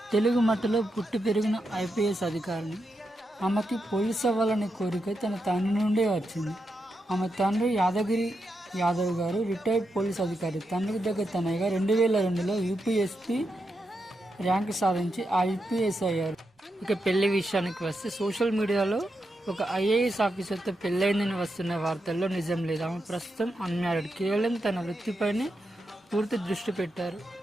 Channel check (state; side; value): normal; both; correlation 0.85